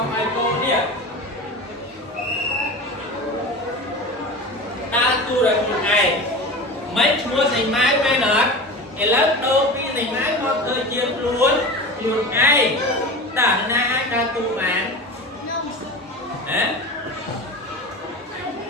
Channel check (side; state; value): both; normal; correlation 0.30